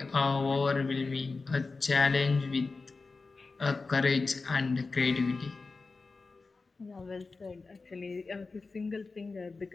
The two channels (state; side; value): quieter; right; 4.0 dB